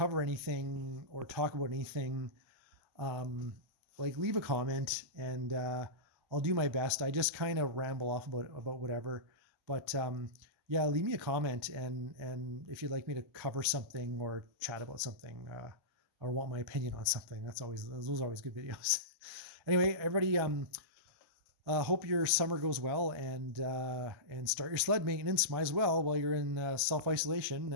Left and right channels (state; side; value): late; left; 1.2 ms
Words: anything or talk about anything, like leave a comment and I'll do my best. I just kind of ramble off about whatever, but yeah, leave me a comment and if you'd like me to cover something or chat about something or want my opinion on something, those are always good videos. Anyway, everybody, hope your summer goes well and start your sled maintenance. Might as well while you're in self-isolation